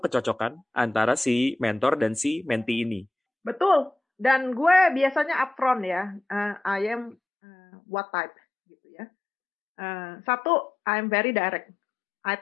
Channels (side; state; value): right; drops out; at 7.2 s